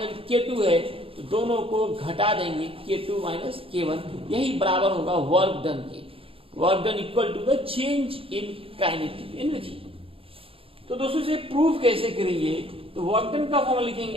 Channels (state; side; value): late; left; 0.27 ms